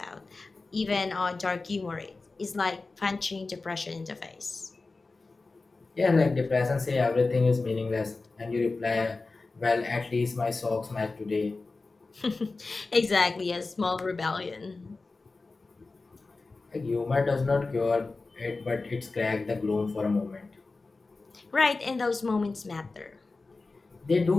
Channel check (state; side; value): quieter; right; 3.7 dB